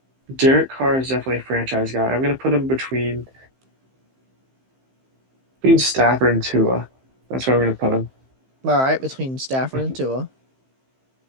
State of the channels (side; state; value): left; late; 15 ms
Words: Derek Carr is definitely a franchise guy. I'm gonna put him between Stafford and Tua. That's where I'm gonna put him. All right. Between Stafford and Tua.